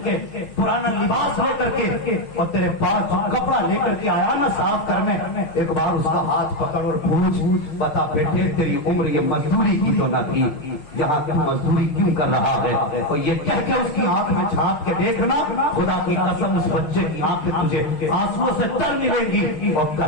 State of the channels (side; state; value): right; late; 6.1 ms